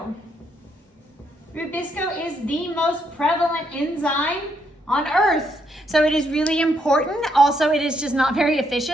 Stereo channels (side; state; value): both; normal; correlation 0.75